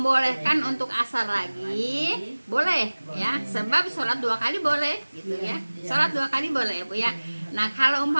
untuk asar lagi, boleh ya. Sebab sholat 2 kali boleh gitu ya. Sholat 2 kali boleh Bu ya. Nah, kalau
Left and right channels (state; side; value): inverted; both; correlation -1.00